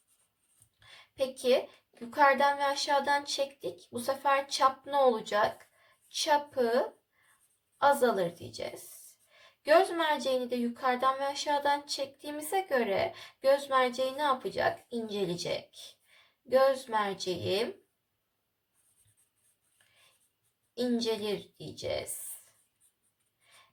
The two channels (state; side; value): identical; both; correlation 1.00